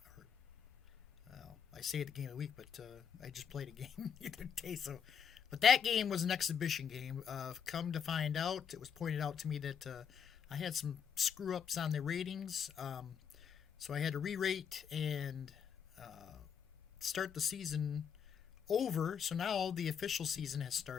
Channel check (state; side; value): quieter; right; 7.5 dB